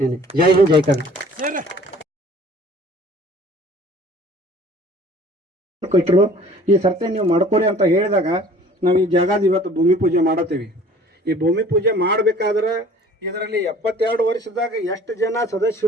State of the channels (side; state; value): both; normal; correlation 0.50